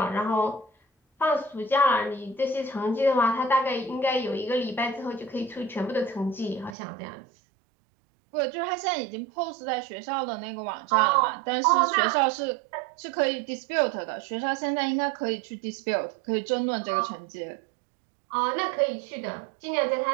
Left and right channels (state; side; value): drops out; left; at 6.8 s